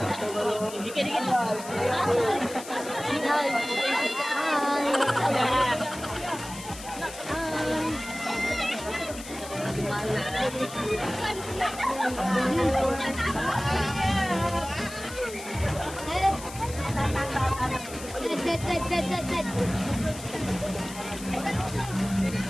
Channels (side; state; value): left; noise; hiss, 13 dB below the sound